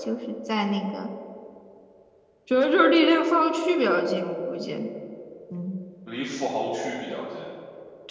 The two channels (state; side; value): identical; both; correlation 1.00